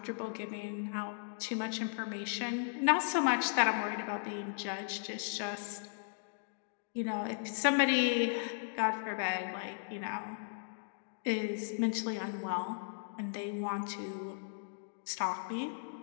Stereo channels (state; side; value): silent; right; digital silence